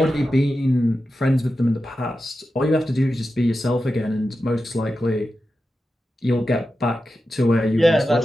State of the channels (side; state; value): both; normal; correlation 0.91